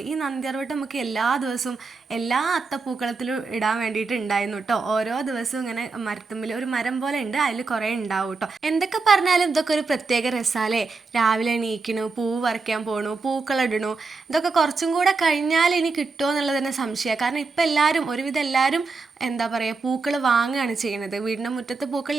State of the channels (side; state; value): left; quieter; 4.2 dB